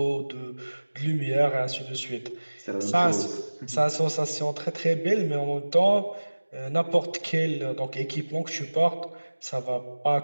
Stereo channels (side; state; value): both; inverted; correlation -1.00